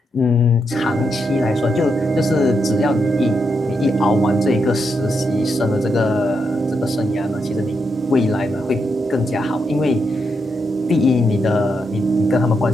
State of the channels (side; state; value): both; normal; correlation 0.82